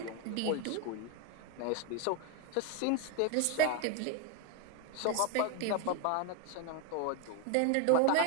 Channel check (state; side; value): different; both; correlation 0.02